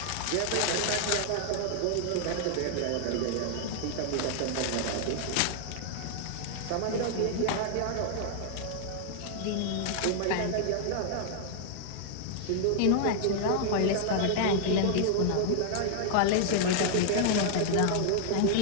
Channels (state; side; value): different; both; correlation -0.01